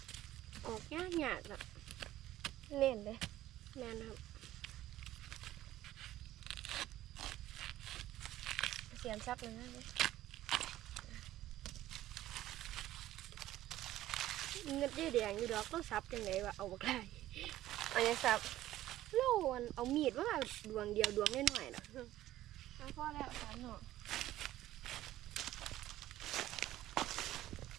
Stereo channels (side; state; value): left; quieter; 14.4 dB